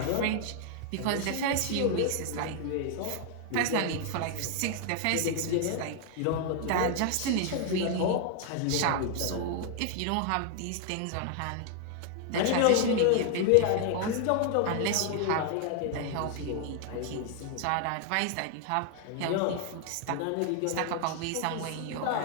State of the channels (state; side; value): different; both; correlation 0.00